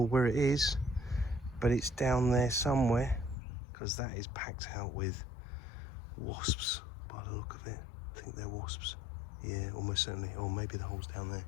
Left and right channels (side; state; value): right; drops out; at 3.4 s